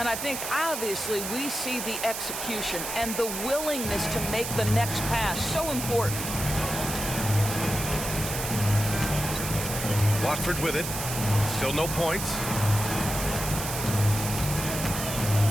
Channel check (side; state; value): right; noise; hiss, 5 dB below the sound